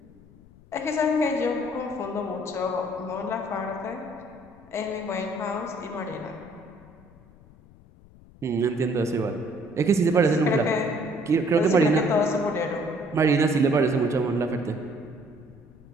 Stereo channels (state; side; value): noise; left; rumble, 24 dB below the sound